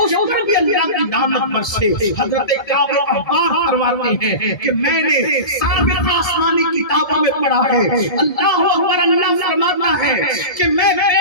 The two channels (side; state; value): right; late; 1.7 ms